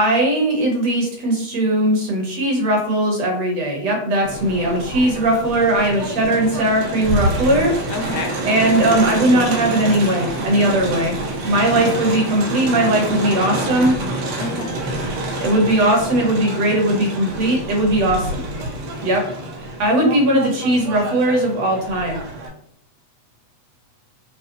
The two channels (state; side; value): late; left; 8.3 ms